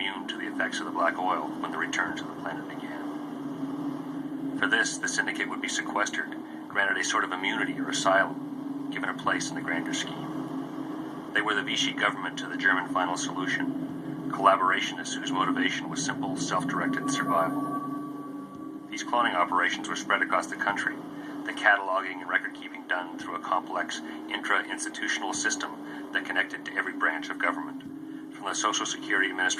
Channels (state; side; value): identical; both; correlation 1.00